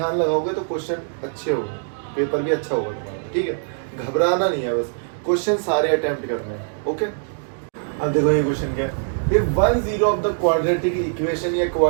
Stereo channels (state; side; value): silent; left; digital silence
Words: लगाओगे तो क्वेश्चन अच्छे होंगे, पेपर भी अच्छा होगा तुम्हारा, ठीक है। घबराना नहीं है, बस क्वेश्चन सारे अटेम्प्ट करने हैं, ओके। अब देखो ये क्वेश्चन क्या है, if one zero of the quadratic equation या